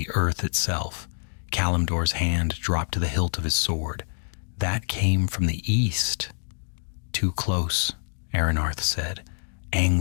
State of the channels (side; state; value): right; silent; digital silence